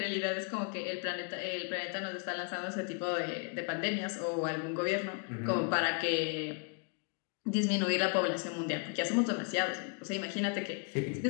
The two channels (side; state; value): right; quieter; 38.0 dB